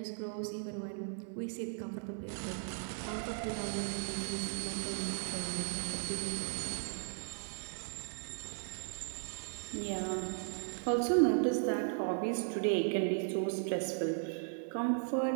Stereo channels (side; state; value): left; silent; 53 dB below the other